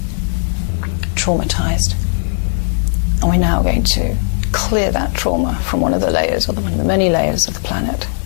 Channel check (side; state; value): right; silent; digital silence